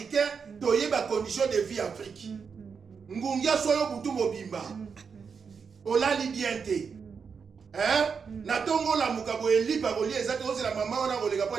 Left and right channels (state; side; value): quieter; left; 5.9 dB